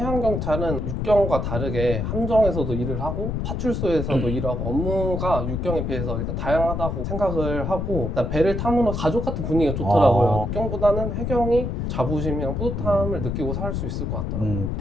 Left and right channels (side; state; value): left; noise; rumble, 2 dB below the sound